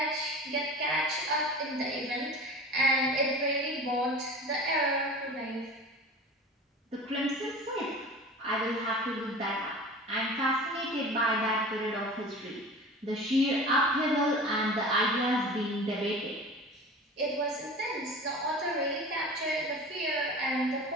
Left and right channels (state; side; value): normal; both; correlation 0.37